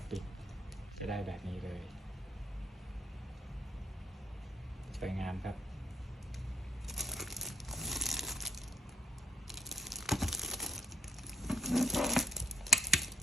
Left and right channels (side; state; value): both; normal; correlation 0.68